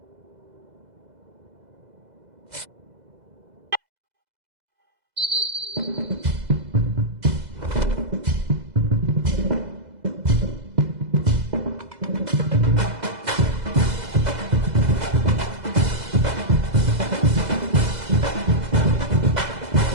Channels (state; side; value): late; left; 2.0 ms